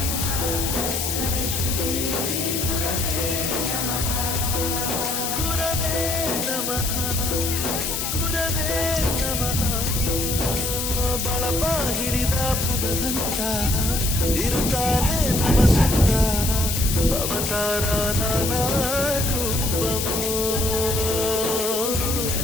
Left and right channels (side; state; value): left; noise; hiss, 2 dB below the sound